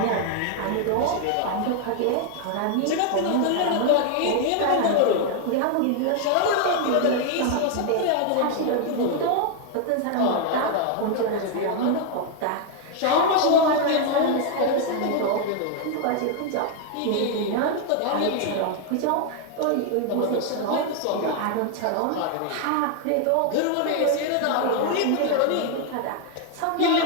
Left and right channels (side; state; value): both; different; correlation 0.00